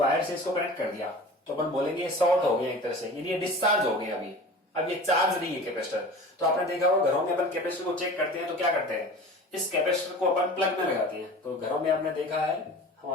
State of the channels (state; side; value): normal; both; correlation 0.38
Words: से इसको कनेक्ट कर दिया, तो अपन बोलेंगे ये शॉर्ट हो गया एक तरह से, यानी ये डिस्चार्ज हो गया अभी, अब ये चार्ज नहीं है कैपेसिटर। तो आपने देखा होगा घरों में अपन कैपेसिटर को चेक करते हैं तो क्या करते हैं, इस कैपेसिटर को अपन प्लग में लगाते हैं। तो घरों में आपने देखा है